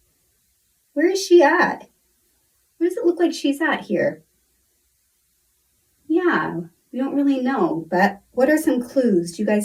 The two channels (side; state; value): both; identical; correlation 1.00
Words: where is she at? Where does it look like she's at here? Yeah, we don't really know, but what are some clues? Do you